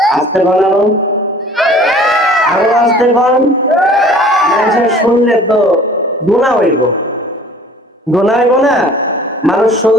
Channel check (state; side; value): normal; both; correlation 0.49